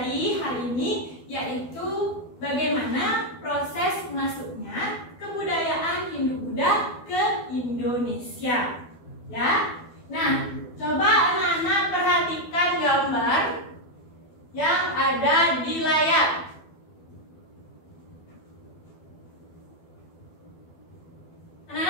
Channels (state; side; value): late; right; 12 ms